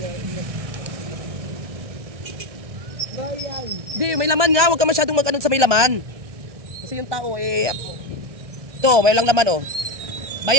Bayan. Hindi, may laman nga. Huwag ka masyadong mag-ano sa may laman. Kasi yung tao ito, may lang laman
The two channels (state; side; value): late; left; 1.6 ms